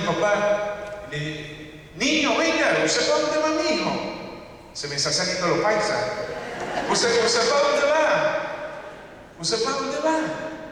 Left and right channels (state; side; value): identical; both; correlation 1.00